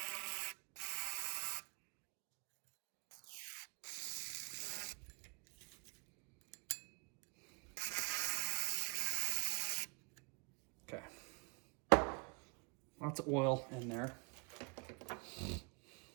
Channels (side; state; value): left; quieter; 33.5 dB